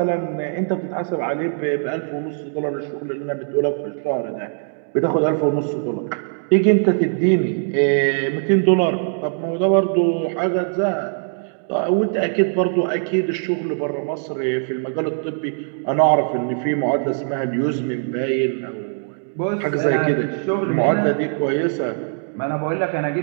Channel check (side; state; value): left; silent; digital silence